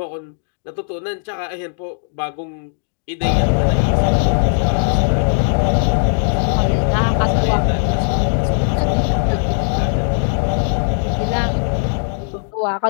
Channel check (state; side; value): silent; right; digital silence